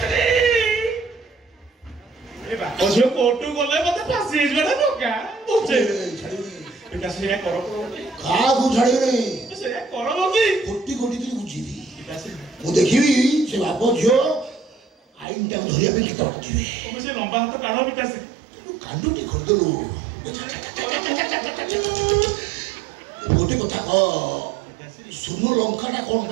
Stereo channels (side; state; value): left; drops out; at 15.2 s